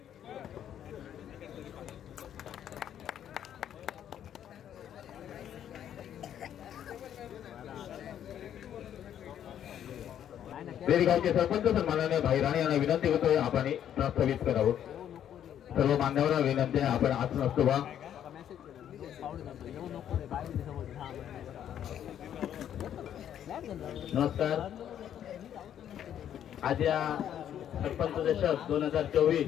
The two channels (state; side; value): quieter; right; 10.1 dB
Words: रेडी गावचे सरपंच सन्माननीय भाई राणे यांना विनंती करतोय आपण प्रस्तावित करावं। सर्व मान्यवरांना विनंती आहे आपण आसन असतो बा। नमस्कार। आज या सरपंच दशक 2024